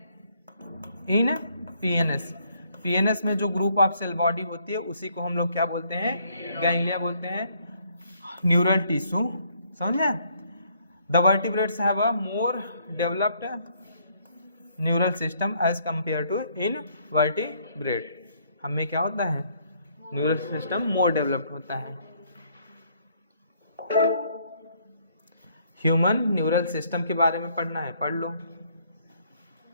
in PNS. PNS में जो ग्रुप ऑफ सेल बॉडी होती है उसी को हम लोग क्या बोलते हैं, गैंग्लिया बोलते हैं, न्यूरल टिश्यू। समझे। The vertebrates have a more developed neural system as compare to invertebrate. हमें क्या होता है, न्यूरल सिस्टम मोर डेवलप्ड होता है। ह्यूमन न्यूरल सिस्टम के बारे में पढ़ना है, पढ़ लो।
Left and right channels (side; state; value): both; inverted; correlation -0.67